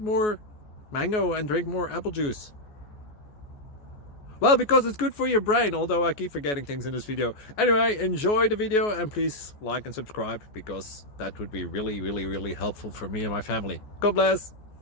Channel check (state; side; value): late; right; 14 ms